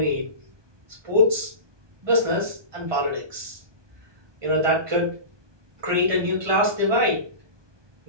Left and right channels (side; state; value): left; late; 1.2 ms